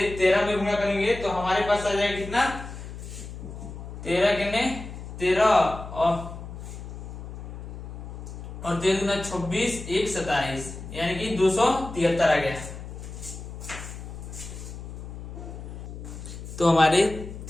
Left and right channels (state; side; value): noise; left; hum, 10 dB below the sound